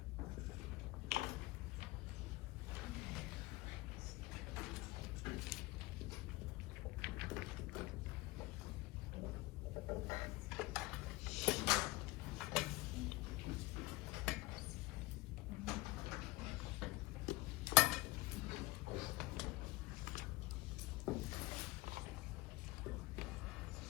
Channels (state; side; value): quieter; right; 20.8 dB